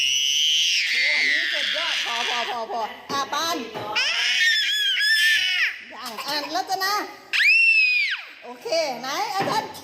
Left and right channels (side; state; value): both; identical; correlation 1.00